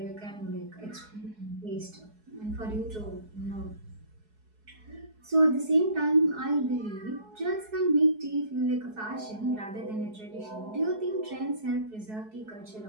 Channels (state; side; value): late; left; 4.7 ms